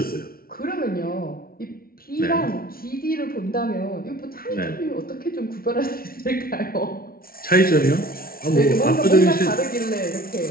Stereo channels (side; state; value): right; late; 0.43 ms